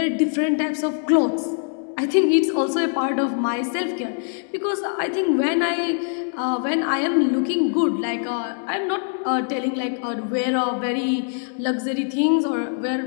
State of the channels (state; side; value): silent; right; 63 dB below the other